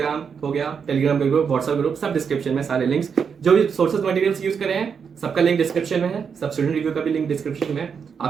हो गया, टेलीग्राम का ग्रुप, व्हाट्सएप ग्रुप, सब डिस्क्रिप्शन में, सारे लिंक्स जो भी सोर्सेज मटेरियल्स यूज करे हैं सबका लिंक डिस्क्रिप्शन में है, सब स्टूडेंट रिव्यू का भी लिंक डिस्क्रिप्शन में है।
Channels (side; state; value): left; quieter; 6.5 dB